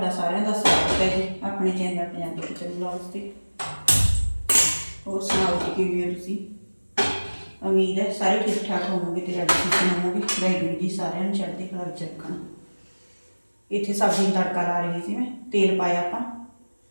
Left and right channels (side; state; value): both; inverted; correlation -1.00